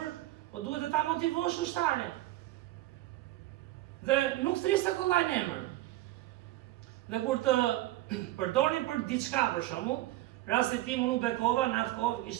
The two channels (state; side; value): quieter; left; 16.6 dB